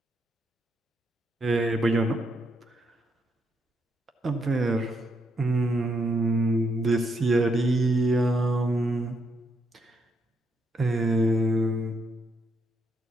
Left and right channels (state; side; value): normal; both; correlation 0.76